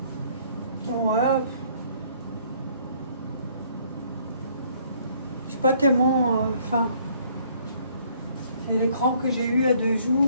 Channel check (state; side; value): inverted; both; correlation -0.63